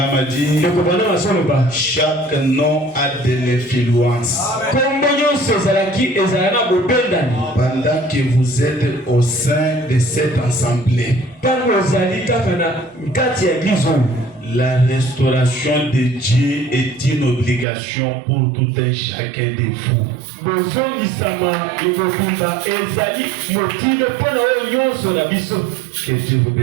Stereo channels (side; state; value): left; drops out; at 17.7 s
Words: a dit, chaque nom a de l'influence. Pendant que vous êtes au sein de cette assemblée, la restauration de Dieu est une obligation pour tout un chacun de vous. Que Dieu vous